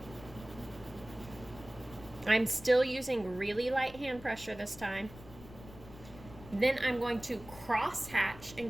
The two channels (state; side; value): noise; left; rumble, 17 dB below the sound